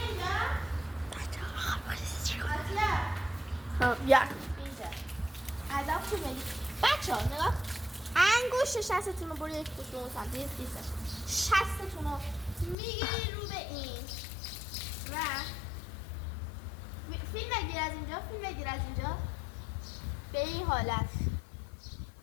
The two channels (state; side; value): drops out; right; at 12.8 s